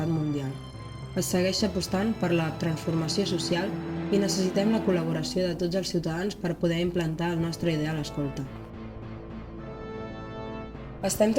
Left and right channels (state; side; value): identical; both; correlation 1.00